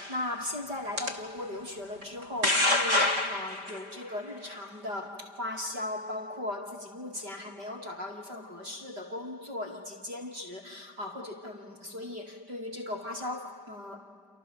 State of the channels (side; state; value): left; late; 5.0 ms